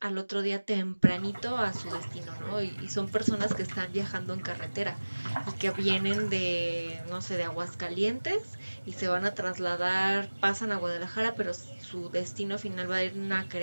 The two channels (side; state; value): both; inverted; correlation -1.00